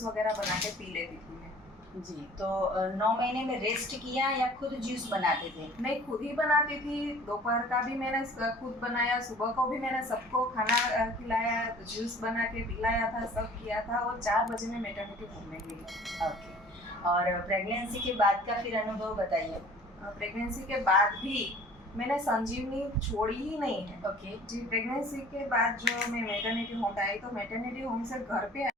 वगैरह बना के पी लेती थी मैं। जी। तो 9 महीने में रेस्ट किया या खुद जूस बनाते थे? मैं खुद ही बनाती थी। दोपहर का भी मैंने खुद बनाया, सुबह को भी मैंने सबको खाना खिलाया, जूस बना के पिलाया था, सब किया था और 4 बजे में मैटरनिटी होम में गई। ओके। और प्रेगनेंसी के बाद का फिर अनुभव बताइए। प्रेगनेंसी के बाद भी मैंने संजीवनी छोड़ी ही नहीं है। ओके जी। प्रेगनेंसी के बाद जो मैं मैटरनिटी होम आई तो मैटरनिटी होम से घर पे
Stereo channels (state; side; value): normal; both; correlation 0.49